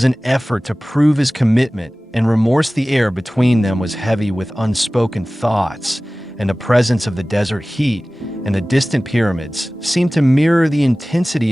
an effort to prove his commitment, and remorse. The air between them was heavy with unspoken thoughts, and the presence of the desert heat and the distant pyramids seemed to mirror the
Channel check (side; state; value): both; normal; correlation 0.97